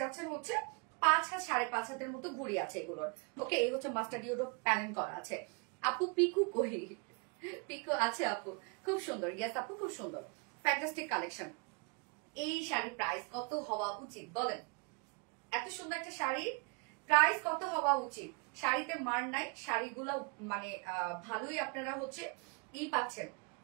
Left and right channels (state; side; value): quieter; left; 33.6 dB